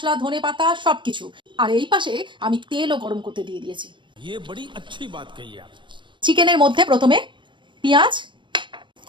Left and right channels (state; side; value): late; left; 0.23 ms